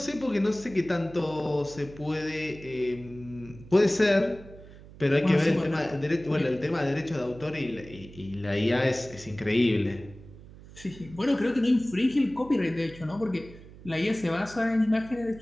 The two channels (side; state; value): right; noise; hum, 19 dB below the sound